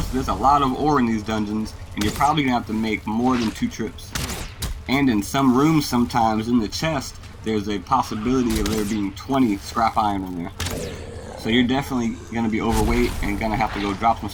there's a lot of ore in these dungeons, and you're probably going to have to make more than 2 trips. And in some rooms sometimes in the chest, there's a possibility of there being 20 scrap iron in there. So you're definitely going to be overweight and going to have to go drop some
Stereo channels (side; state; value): both; identical; correlation 1.00